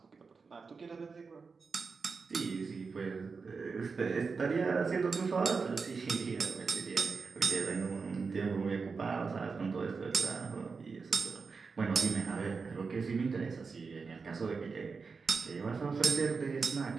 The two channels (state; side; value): quieter; left; 4.9 dB